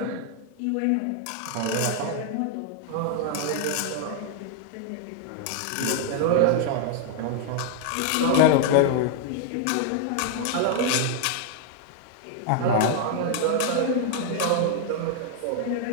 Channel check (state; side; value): different; both; correlation 0.00